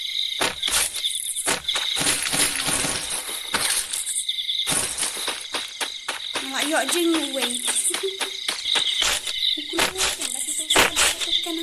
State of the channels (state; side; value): identical; both; correlation 1.00